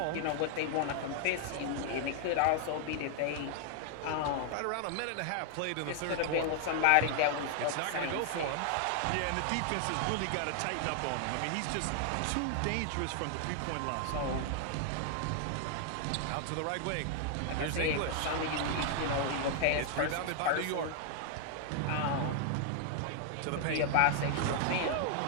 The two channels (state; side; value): different; both; correlation 0.00